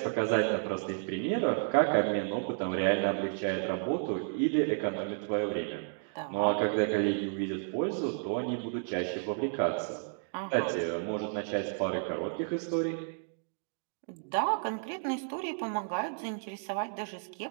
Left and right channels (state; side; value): silent; left; digital silence